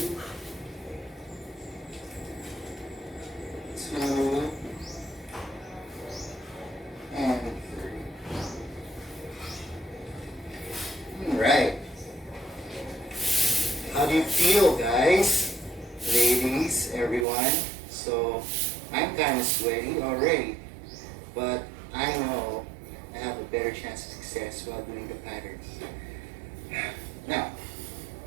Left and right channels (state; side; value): drops out; left; at 17.2 s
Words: 2. And 3. Alright. How do you feel, guys? Ladies, everyone. So, I'm kind of sweaty already, but I know I have a better chance of success while doing the patterns. Now,